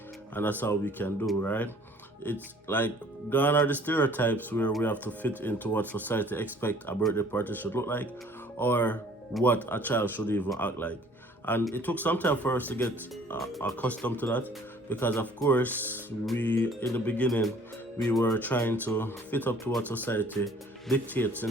and that's how we can do, right? It's like gone are the stereotypes where we have to fit into what society expect a birthday party should look like, or what a child should even act like. And it took some time for us to get accustomed to that, because of course in the beginning we were trying to fit up to what society dictates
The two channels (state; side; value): normal; both; correlation 0.55